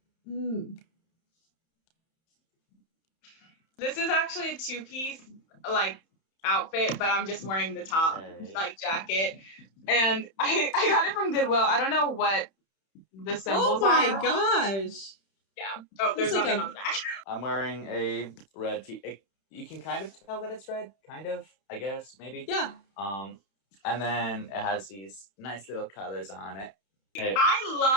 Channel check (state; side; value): late; right; 31 ms